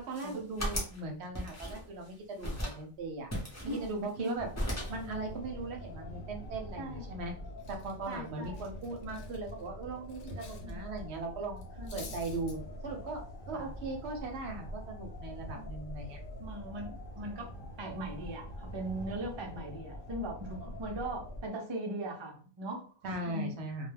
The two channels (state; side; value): normal; both; correlation 0.14